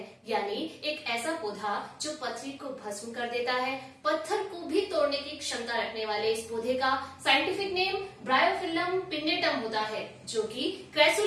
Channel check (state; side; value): identical; both; correlation 1.00